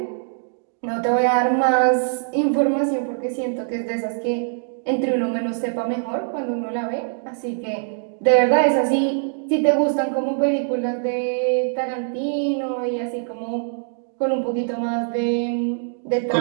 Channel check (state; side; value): silent; left; digital silence